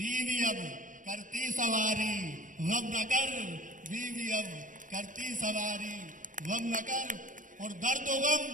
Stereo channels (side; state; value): left; late; 0.38 ms